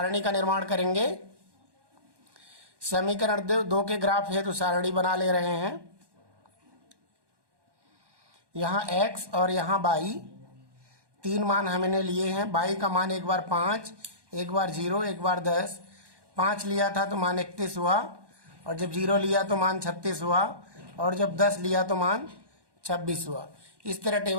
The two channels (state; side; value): late; left; 1.1 ms